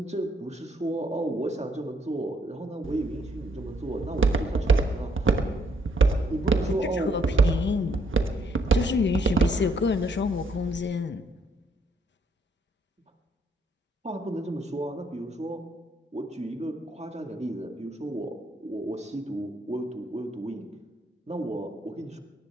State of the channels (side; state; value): both; normal; correlation 0.70